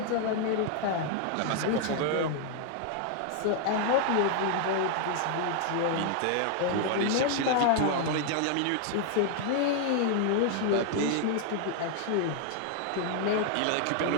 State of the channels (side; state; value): both; different; correlation 0.00